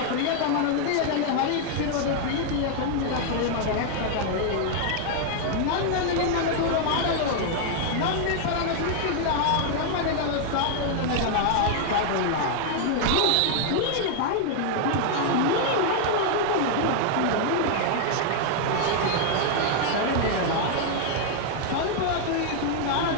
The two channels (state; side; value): different; both; correlation 0.00